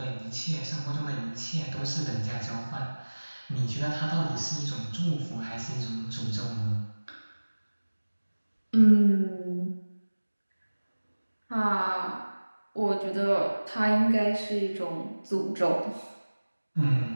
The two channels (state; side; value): inverted; both; correlation -1.00